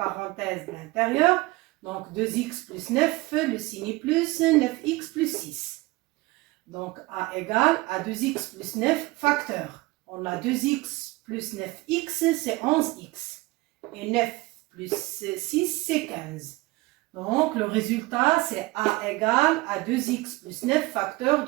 de l'intérieur. Donc, 2x plus 9, le signe plus, 9x plus 6. Donc, a égale à 2x plus 9 facteur. On a 2x plus 9x, c'est 11x. Et 9 plus 6, c'est 15. Donc, le résultat, c'est a égale à 2x plus 9 facteur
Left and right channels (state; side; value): quieter; left; 21.7 dB